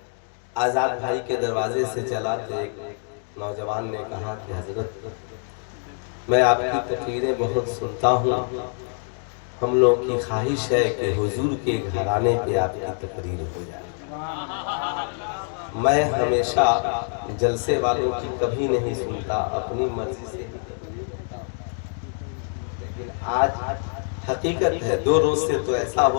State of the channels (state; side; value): silent; right; 58 dB below the other